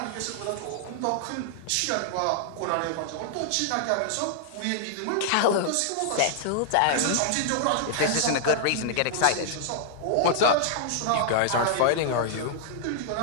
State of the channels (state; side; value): different; both; correlation -0.01